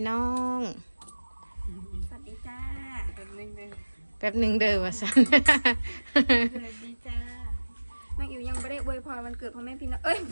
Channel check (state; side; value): inverted; both; correlation -1.00